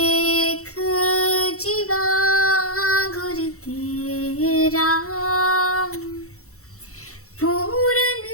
जीवा गुर तेरा, पूरन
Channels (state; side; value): late; right; 0.64 ms